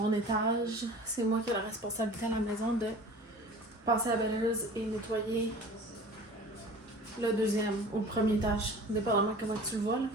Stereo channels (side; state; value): both; normal; correlation 0.42